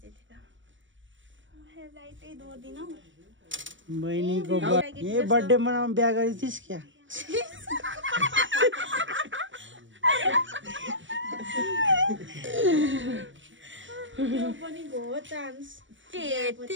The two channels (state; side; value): late; left; 0.56 ms